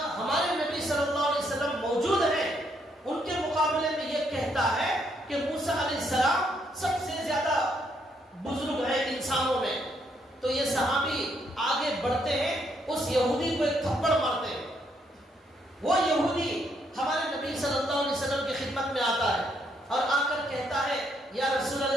ہمارے نبی صلی اللہ علیہ وسلم موجود ہیں, ان کے مقابلے میں یہ کہتا ہے کہ موسیٰ علیہ السلام سب سے زیادہ بزرگ ہیں انسانوں میں. تو یہ صحابی آگے بڑھتے ہیں, اس یہودی کو ایک تھپڑ مارتے ہیں. وہ یہودی ہمارے نبی صلی اللہ علیہ وسلم کی خدمت میں آتا ہے اور آ کر کہتا ہے یا رسول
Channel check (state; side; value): normal; both; correlation 0.74